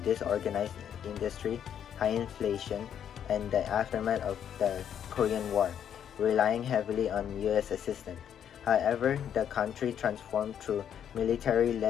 disorganized industry, high inflation, and the aftermath of the Korean War, relying heavily on U.S. assistance. However, the country transformed through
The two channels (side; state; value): right; quieter; 9.1 dB